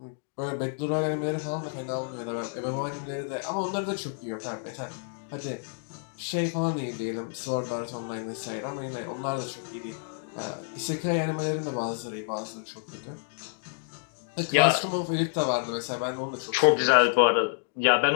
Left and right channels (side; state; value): right; silent; digital silence